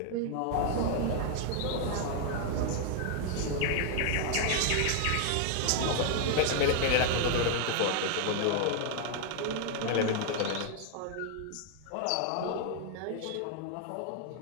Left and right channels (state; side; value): different; both; correlation 0.00